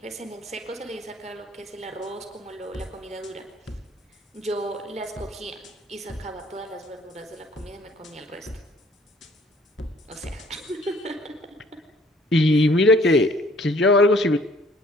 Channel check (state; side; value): normal; both; correlation 0.59